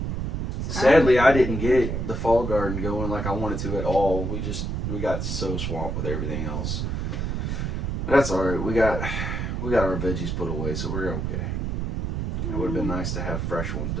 Sadly, I didn't get the fall garden going like I wanted to at all. We got so swamped with everything else. But that's all right. We got our veggies put away, so we're okay. It would have been nice to have fresh ones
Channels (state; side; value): noise; right; rumble, 2 dB below the sound